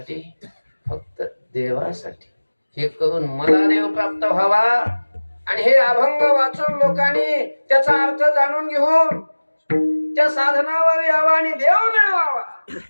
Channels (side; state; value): both; inverted; correlation -1.00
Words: फक्त देवासाठी. हे करून मला देव प्राप्त व्हावा आणि हे अभंग वाचून लोकांनी त्याचा अर्थ जाणून घेऊन त्या साधनावर यावा आणि देव मिळवावा.